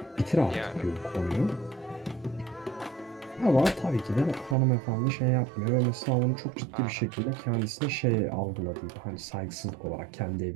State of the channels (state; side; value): drops out; left; at 4.5 s